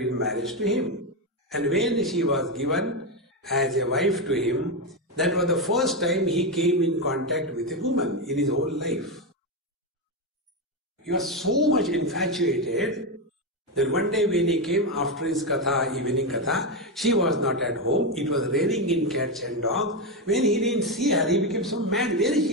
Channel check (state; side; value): normal; both; correlation 0.09